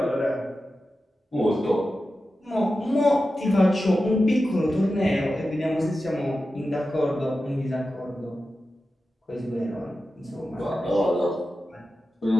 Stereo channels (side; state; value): both; normal; correlation 0.92